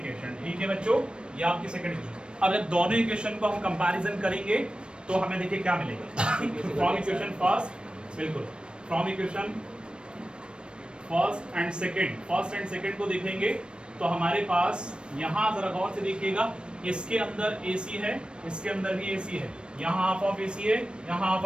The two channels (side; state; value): left; late; 0.055 ms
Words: ठीक है बच्चों, ये आपकी सेकंड इक्वेशन। अब जब दोनों इक्वेशन को हम कंपैरिजन करेंगे तो हमें देखिए क्या मिलेगा। फ्रॉम इक्वेशन फर्स्ट, बिल्कुल from equation first and second को देखेंगे तो हमारे पास यहाँ जरा गौर से देखिएगा, इसके अंदर AC है, इसके अंदर भी AC है, यहाँ हाफ ऑफ AC है, यहाँ हाफ